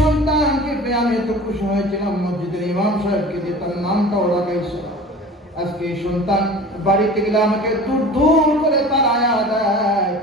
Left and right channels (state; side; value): normal; both; correlation 0.40